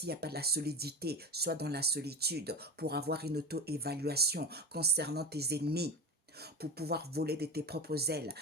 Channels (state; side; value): normal; both; correlation 0.26